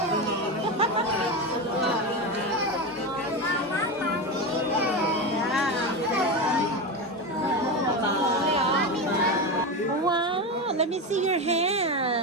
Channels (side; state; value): both; normal; correlation 0.18